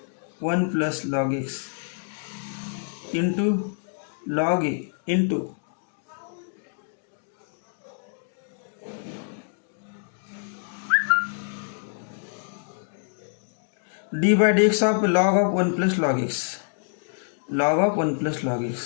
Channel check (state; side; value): silent; right; digital silence